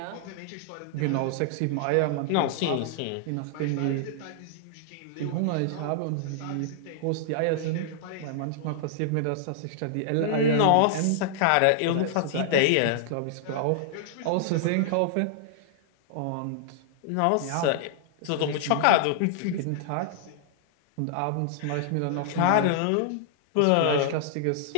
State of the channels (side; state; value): both; different; correlation -0.01